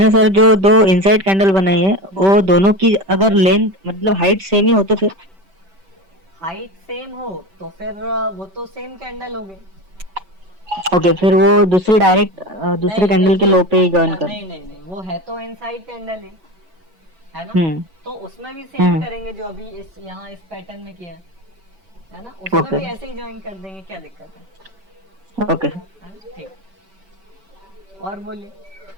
सर जो दो इनसाइड कैंडल बनाई है वो दोनों की अगर लेंथ मतलब हाइट सेम ही हो तो फिर? हाइट सेम हो तो फिर वो तो सेम कैंडल हो गई। ओके, फिर वो दूसरी डायरेक्ट दूसरे कैंडल के लो पे ही ज्वाइन कर। नहीं, वो है तो इनसाइड कैंडल है ना। तो उसमें भी सेम करेंगे जो अभी इस यहाँ इस पैटर्न में किया है ना, उसमें भी ऐसे ही ज्वाइन कर देंगे, क्या दिक्कत है? ओके ठीक। और बोलिए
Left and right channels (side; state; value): left; late; 5.2 ms